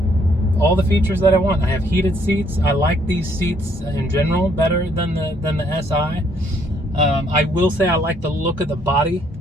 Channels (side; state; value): both; normal; correlation 0.68